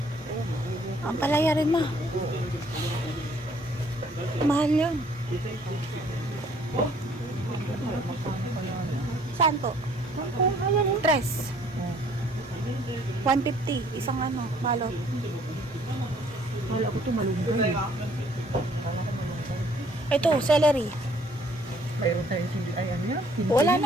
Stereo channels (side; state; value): both; normal; correlation 0.61